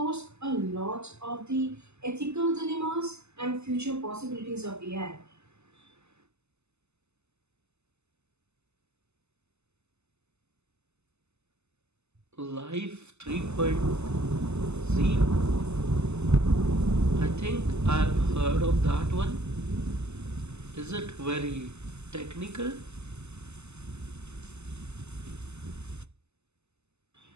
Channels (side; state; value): left; late; 0.81 ms